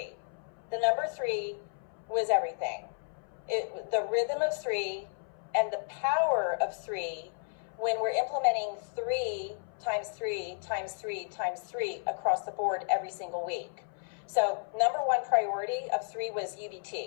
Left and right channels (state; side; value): silent; right; 56 dB below the other